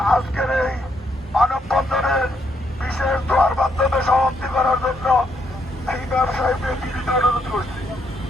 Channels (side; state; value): both; normal; correlation 0.75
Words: আজকের এই মানববন্ধনের বিশেষ দোয়ার মাধ্যমে সমাপ্তি করার জন্য এই ব্যবসায়ীদের বিনীত অনুরোধ করছি।